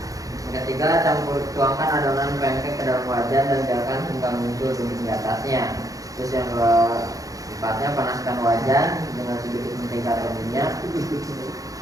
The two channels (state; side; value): late; left; 0.17 ms